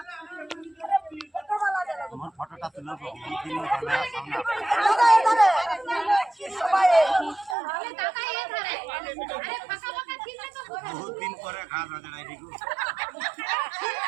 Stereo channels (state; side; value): drops out; left; at 7.6 s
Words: আমার ফটোটা তুলে বহুত দিন পরে খাওয়া